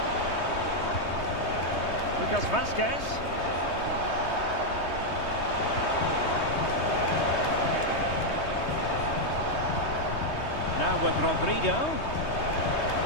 Lucas Vasquez. Now with Rodrigo.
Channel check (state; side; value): late; right; 3.2 ms